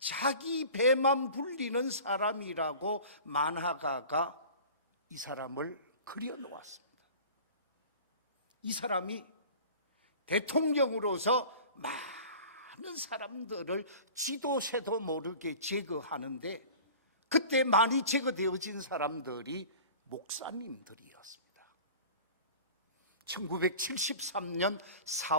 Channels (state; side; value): inverted; both; correlation -0.41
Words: 배만 불리는 사람이라고 만화가가 이 사람을 그려놓았습니다. 이 사람이 대통령으로서 많은 사람들을 쥐도 새도 모르게 제거하는데 그때 많이 제거되어진 사람들이 목사님들이었습니다. 1973년